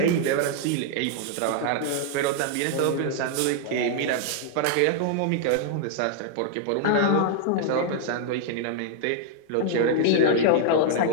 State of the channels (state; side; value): different; both; correlation 0.00